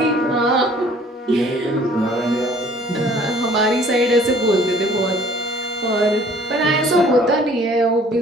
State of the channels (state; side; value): normal; both; correlation 0.54